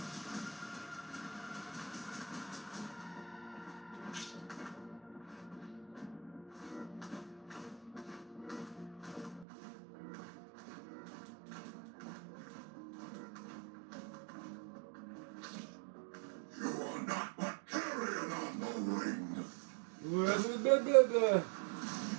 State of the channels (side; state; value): left; drops out; at 9.5 s